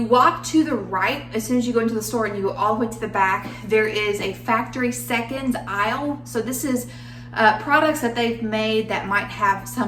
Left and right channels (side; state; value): both; identical; correlation 1.00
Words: walk to the right, as soon as you go into the store and you go all the way to the back, there is a factory seconds aisle. So this is products that they've made that might have